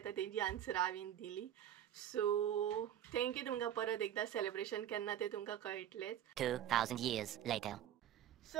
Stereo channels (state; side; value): quieter; left; 10.8 dB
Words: तेजी आन्सर हांवें दिली. सो थँक्यू तुमकां परत एकदा. सेलिब्रेशन केन्ना ते तुमकां कळटलेच. 2000 years later.